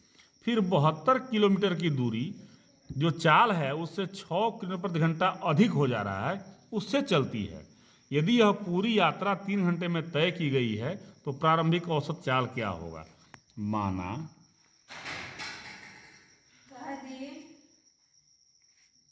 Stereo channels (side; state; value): both; identical; correlation 1.00